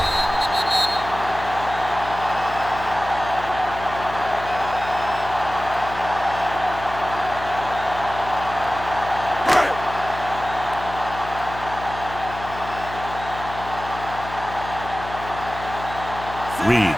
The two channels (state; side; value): noise; left; hum, 11 dB below the sound